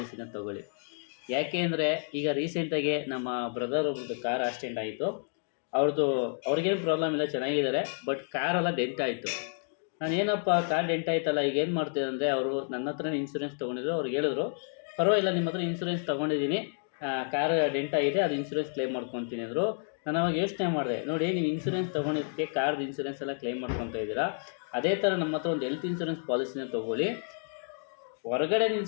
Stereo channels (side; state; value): right; silent; 58 dB below the other